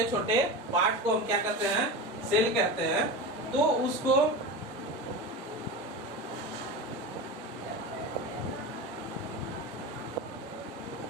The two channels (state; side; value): normal; both; correlation 0.25